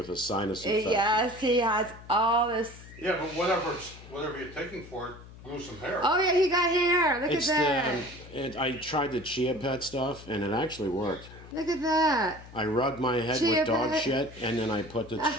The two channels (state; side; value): noise; left; hum, 18 dB below the sound